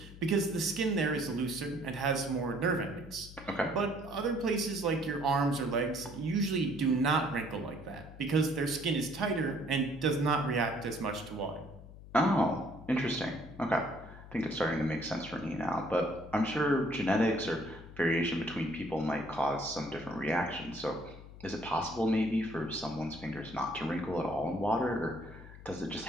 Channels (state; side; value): noise; left; hum, 16 dB below the sound